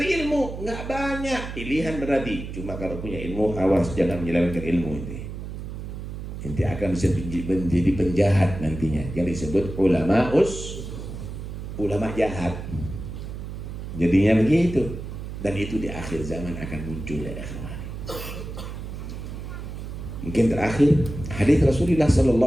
ilmu nggak banyak. Pilihan berarti. Cuma kalau punya ilmu, awas jangan menyelewengkan ilmu ini. Nanti akan bisa menjadi penjahat nantinya, yang disebut ulama jahat. Jadinya begitu. Dan itu di akhir zaman akan muncul ya akhwani. Mungkin terakhir hadis Rasulullah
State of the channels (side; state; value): right; noise; hum, 8 dB below the sound